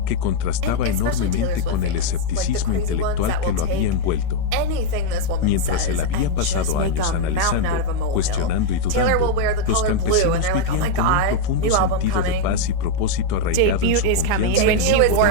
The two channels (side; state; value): both; different; correlation 0.00